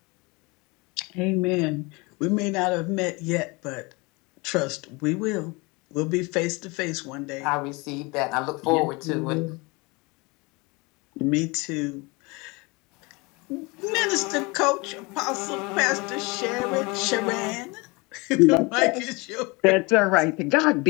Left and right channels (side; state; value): right; quieter; 26.5 dB